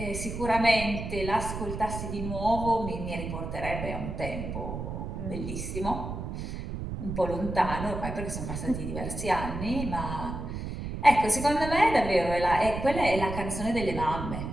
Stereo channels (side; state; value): right; noise; rumble, 6 dB below the sound